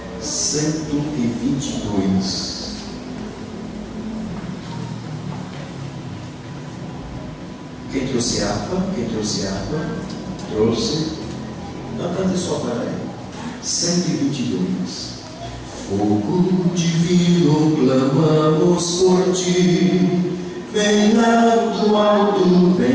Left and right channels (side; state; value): both; identical; correlation 1.00